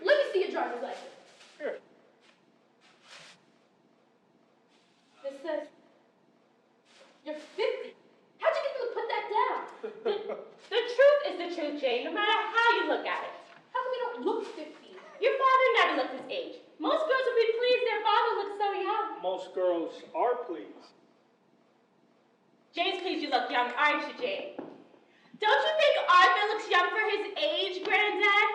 Let me see your driver's license. Here. This says you're 50. How'd you get them to put that down? The truth is the truth, Jane, no matter how you look at it. How come you don't look 50? Your father never looked his age. Most girls would be pleased their father looks so young. Most girls are pleased. Jane's pleased you look young, aren't you, Jane? Don't you think Arthur looks young for his age, Granddad?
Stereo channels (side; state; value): both; identical; correlation 1.00